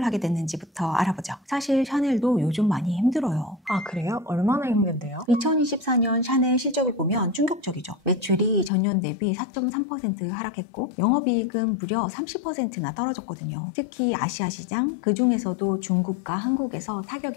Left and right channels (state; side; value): drops out; right; at 8.7 s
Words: 하게 됐는지부터 알아보죠. 사실 샤넬도 요즘 많이 힘들어요. 아, 그래요? 얼마나 힘든데요? 2024년 샤넬 실적을 보면 충격적이죠. 매출이 전년 대비 4.3% 하락했고 영업이익은 무려 30%나 떨어졌거든요. 특히 아시아 시장, 그중에서도 중국과 한국에서